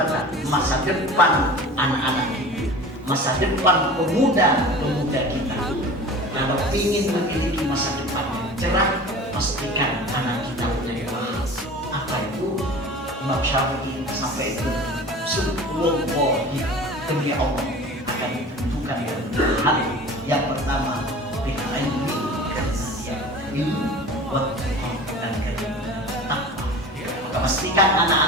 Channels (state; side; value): normal; both; correlation 0.38